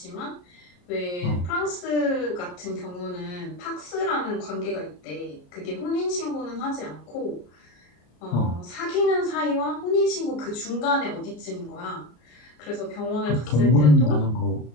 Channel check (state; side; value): late; right; 33 ms